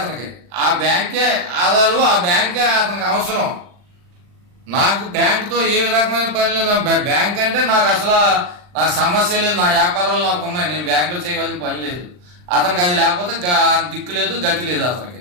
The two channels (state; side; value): late; left; 40 ms